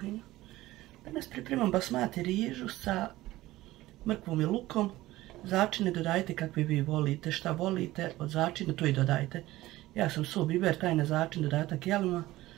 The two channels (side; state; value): left; quieter; 17.0 dB